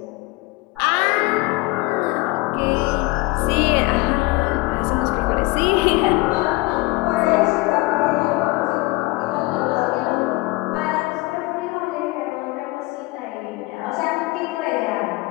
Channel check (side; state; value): right; quieter; 22.2 dB